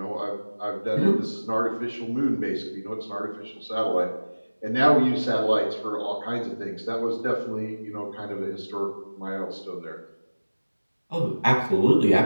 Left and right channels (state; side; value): inverted; both; correlation -1.00